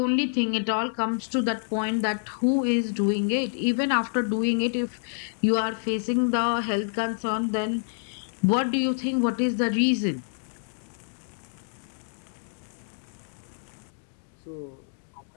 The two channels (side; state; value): right; silent; digital silence